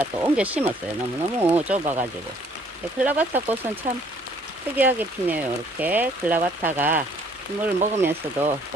또 옮겨 심었어요. 너무너무 좁아가지고. 클라바타 꽃은 참 특이하게 피네요. 이렇게 클라바타가 물을 먹으면서도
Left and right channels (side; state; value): both; normal; correlation 0.61